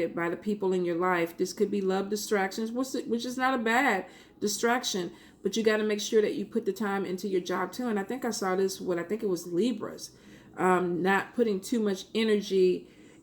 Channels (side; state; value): both; identical; correlation 1.00